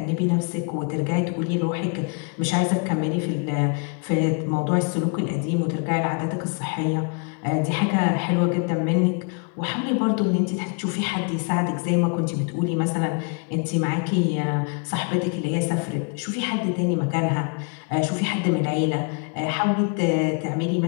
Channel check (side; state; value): right; quieter; 37.7 dB